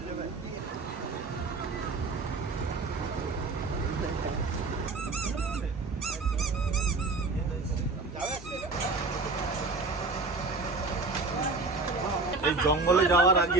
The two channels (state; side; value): quieter; left; 3.6 dB